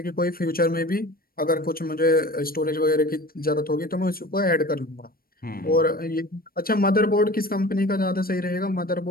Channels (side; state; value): right; late; 0.43 ms